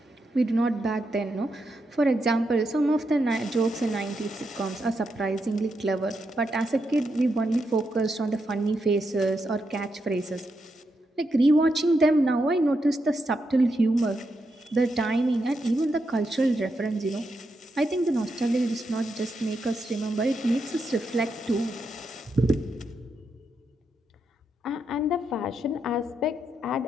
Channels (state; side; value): normal; both; correlation 0.83